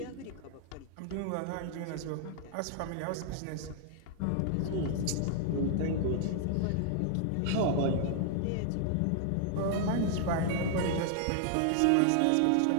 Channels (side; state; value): both; different; correlation 0.00